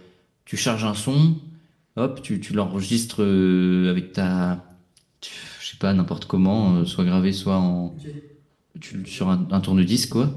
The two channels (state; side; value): identical; both; correlation 1.00